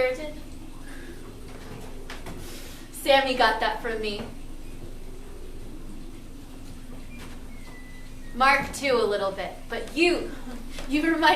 Sammy got that from me. Mark too, a little bit, but you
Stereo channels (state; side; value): identical; both; correlation 1.00